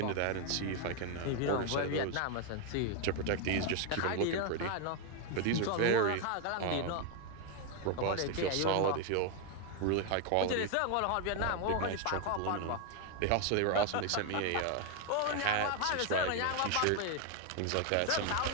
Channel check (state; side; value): different; both; correlation 0.01